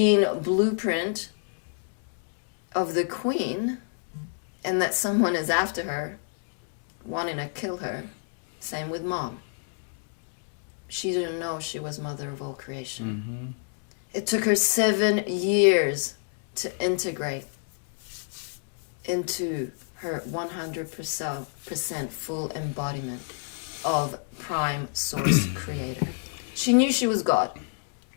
blueprint of the queen and that someone is after her, wanting to kill her. Same with mom. She didn't know she was mother of all creation. Mm-hmm. It took her 7 years to integrate into her 100% full embodiment of prime source creator. She knew she was God.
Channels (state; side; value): silent; right; 58 dB below the other